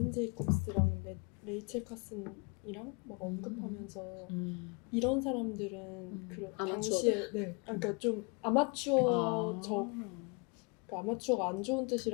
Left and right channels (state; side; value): quieter; right; 32.3 dB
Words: 제이콥스랑 레이첼 카슨이랑 막 언급하면서 이런 사람들은 그 당시에 그러니까 좀 아마추어적 그러니까 아마추어가 안 좋은